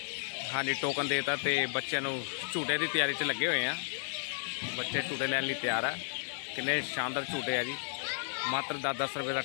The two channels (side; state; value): right; silent; 56 dB below the other